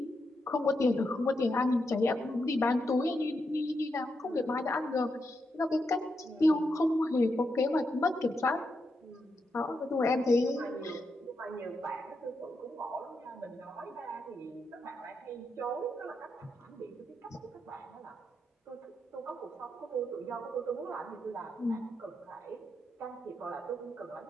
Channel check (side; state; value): both; normal; correlation 0.83